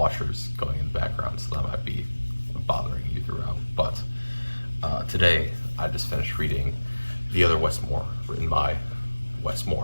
going in the background, so that might be bothering you throughout. But today, I just finished reading The Other Westmore, written by Wes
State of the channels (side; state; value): both; inverted; correlation -1.00